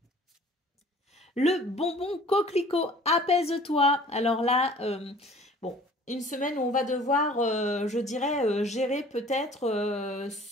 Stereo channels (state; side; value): normal; both; correlation 0.49